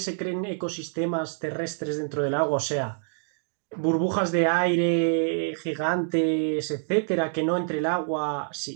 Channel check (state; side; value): silent; left; digital silence